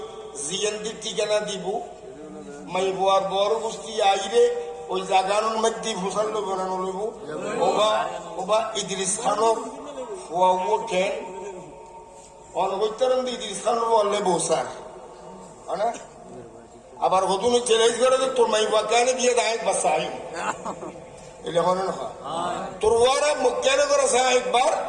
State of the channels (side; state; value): both; identical; correlation 1.00